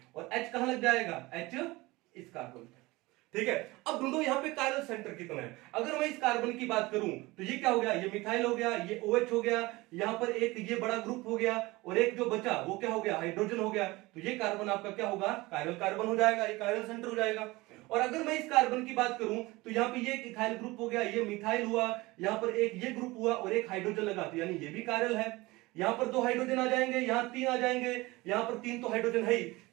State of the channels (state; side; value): quieter; left; 21.4 dB